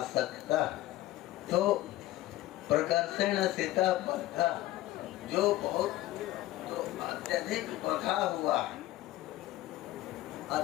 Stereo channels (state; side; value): quieter; right; 16.0 dB